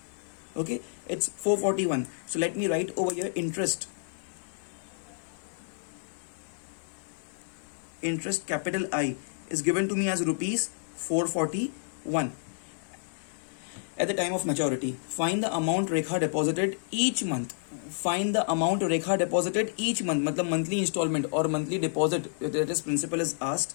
Okay, it's 441. So let me write over here interest. Interest capital I is given to me as rupees 441 at the time of maturity. Find the amount Rekha deposited each month. Find the amount Rekha deposited each month. मतलब monthly installment or monthly deposit, that is principal is asked.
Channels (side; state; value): right; silent; 58 dB below the other